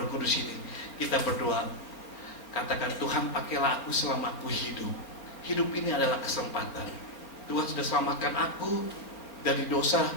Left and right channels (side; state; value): right; late; 4.5 ms